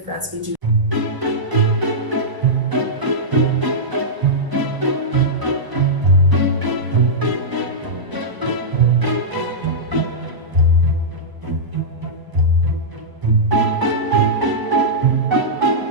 France we do.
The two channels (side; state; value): left; late; 1.0 ms